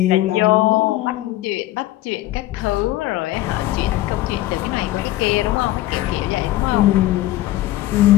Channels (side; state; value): right; quieter; 15.8 dB